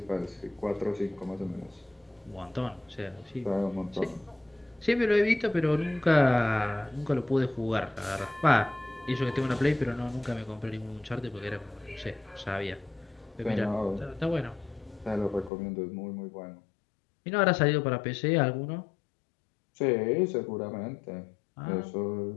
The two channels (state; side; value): drops out; right; at 15.5 s